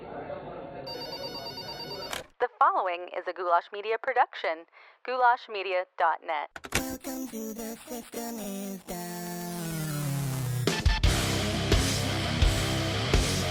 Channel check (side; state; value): both; identical; correlation 1.00